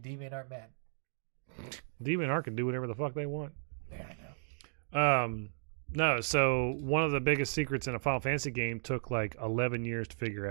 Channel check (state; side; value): silent; left; digital silence